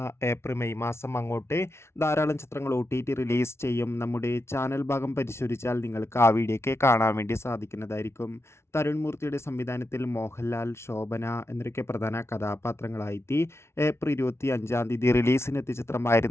ഏപ്രിൽ മെയ് മാസം അങ്ങോട്ട് ധാരാളം ചിത്രങ്ങൾ OTT റിലീസ് ചെയ്യും. നമ്മുടെ ചാനൽ ഭാഗം പരിശോധിച്ചാൽ നിങ്ങൾക്ക് ആ വീഡിയോയ്ക്ക് കാണാൻ വേണ്ടി സാധിക്കുന്നതായിരിക്കും. തരുൺ മൂർത്തിയുടെ സംവിധാനത്തിൽ മോഹൻലാൽ, ശോഭന എന്നൊക്കെ പ്രധാന കഥാപാത്രങ്ങളായി ഏപ്രിൽ 25 റിലീസിനെത്തിയ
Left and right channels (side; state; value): right; late; 0.13 ms